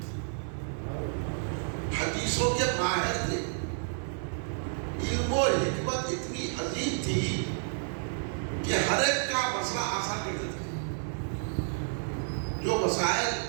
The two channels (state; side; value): silent; left; digital silence